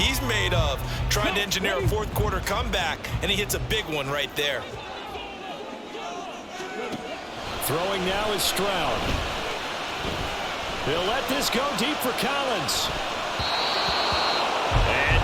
made of. Trying to engineer a fourth-quarter comeback. And he hits a big one right there. Throwing now is Stroud. They'll let this go deep for Collins.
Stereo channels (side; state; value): both; identical; correlation 1.00